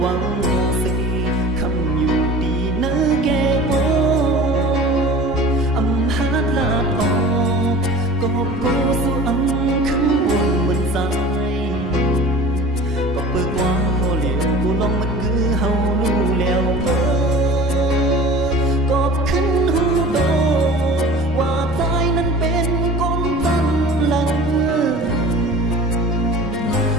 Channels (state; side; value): normal; both; correlation 0.40